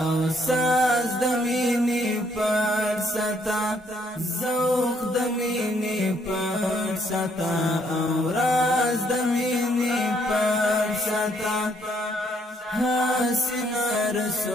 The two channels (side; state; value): both; normal; correlation 0.69